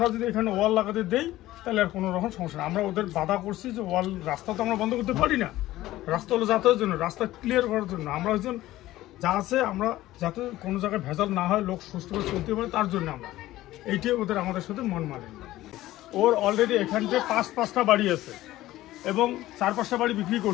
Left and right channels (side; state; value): right; quieter; 15.8 dB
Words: যদি এখানে ওয়াল লাগাতে দেই তাহলে আর কোনো রকম সমস্যা না। আমরা ওদের বাধা করছি যে ওয়াল, রাস্তা তো আমরা বন্ধ করতে পারি না, রাস্তা হলো যাতায়াতের জন্য, রাস্তা ক্লিয়ার করার জন্য। আমরা হচ্ছেন যা আছে, আমরা যাতে কোনো জায়গায় ভেজাল না হয়, লোক সুস্থভাবে চলতে পারে, তার জন্য আমরা এইটাই ওদের আমাদের সাথে মন মানে। ওর অলরেডি এখানতে 5-5টা বাড়ি আছে এবং 4-5টা বাড়ি বিক্রি